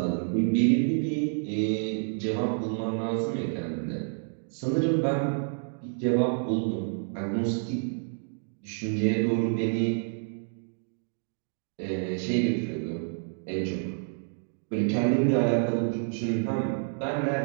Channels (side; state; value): left; silent; 59 dB below the other